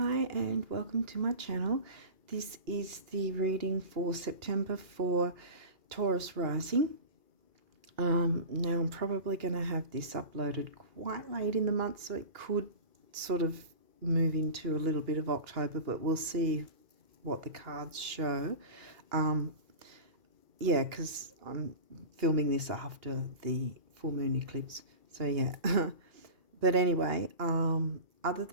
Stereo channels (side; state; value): left; late; 2.8 ms